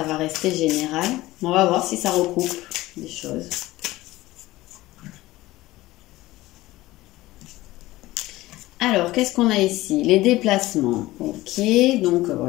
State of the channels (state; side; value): quieter; right; 17.8 dB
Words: va rester général. On va voir si ça recoupe des choses. Alors, qu'est-ce qu'on a ici? Les déplacements. Ok, donc